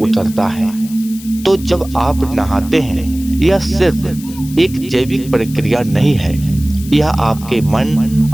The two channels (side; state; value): left; noise; hiss, 17 dB below the sound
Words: है। तो जब आप नहाते हैं यह सिर्फ एक जैविक प्रक्रिया नहीं है, यह आपके मन